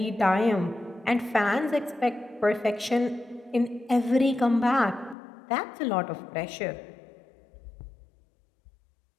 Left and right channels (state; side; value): drops out; right; at 5.2 s